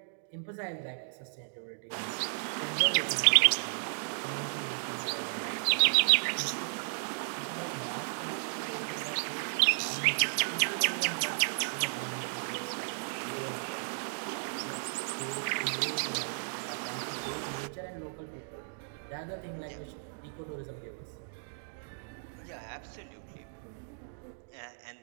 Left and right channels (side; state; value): left; silent; digital silence